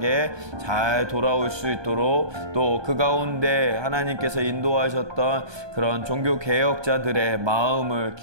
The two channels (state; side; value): late; left; 1.2 ms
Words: 잘 돌아올 수 있도록 또 그 가운데 하나님께서 인도하셨던 그런 종교개혁자들의 마음을